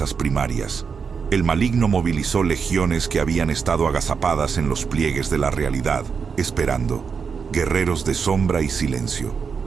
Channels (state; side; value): quieter; left; 5.9 dB